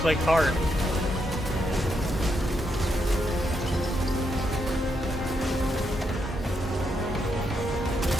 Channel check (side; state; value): both; normal; correlation 0.80